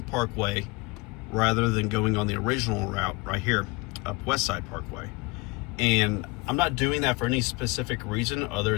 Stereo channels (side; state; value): right; quieter; 25.3 dB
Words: Parkway rather than going on the original route right here up West Side Parkway. And I'm not doing that for any specific reason